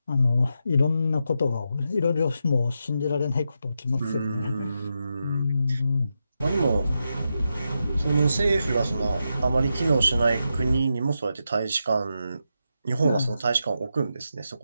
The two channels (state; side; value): inverted; both; correlation -0.86